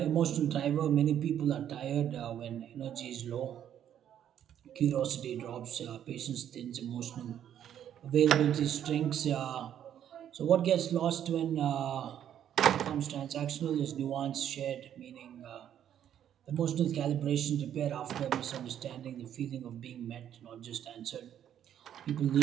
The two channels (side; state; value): left; quieter; 10.1 dB